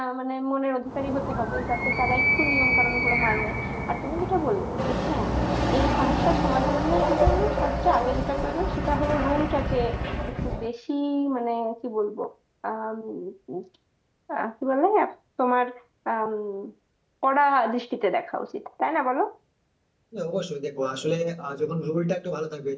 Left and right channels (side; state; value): both; identical; correlation 1.00